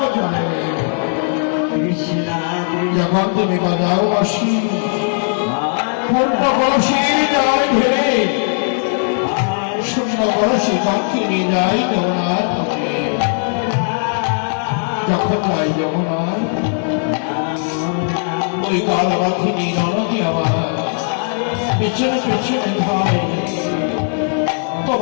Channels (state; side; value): silent; right; 60 dB below the other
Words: জানে। যখন তুমি বাজাও বাসি পূর্ণ কলসির জল ঢেলে শূন্য কলসি পাখি নিয়ে যাই যমুনার পথে। যখন যাই যমুনার ওই কাল পাখিনি ননদি আমার পেছনে পেছনে ধায়।